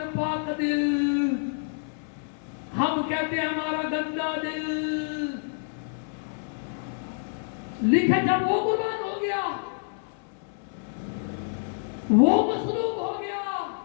दिल, हम कहते हैं हमारा गंदा दिल। लिखा जब वो कुर्बान हो गया, वो मसलूब हो गया,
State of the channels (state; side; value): silent; right; 60 dB below the other